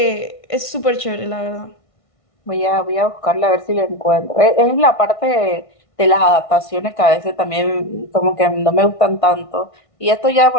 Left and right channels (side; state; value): right; late; 1.5 ms